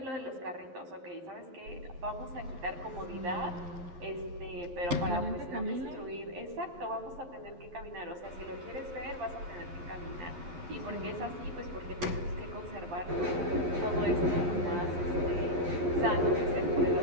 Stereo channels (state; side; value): late; left; 11 ms